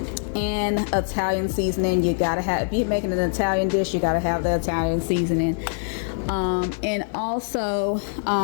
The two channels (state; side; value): silent; right; 63 dB below the other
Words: and Italian seasoning. You gotta have, if you're making an Italian dish, you gotta have the Italian seasoning, and also